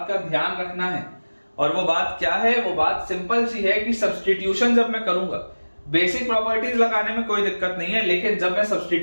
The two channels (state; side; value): inverted; both; correlation -1.00